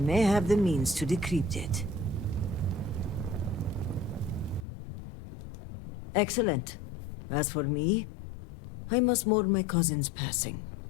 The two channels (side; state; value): right; drops out; at 4.7 s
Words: have the means to decrypt it. Excellent. As for me, I must mourn my cousin's passing.